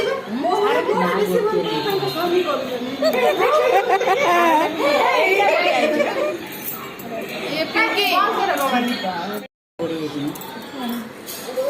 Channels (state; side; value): identical; both; correlation 1.00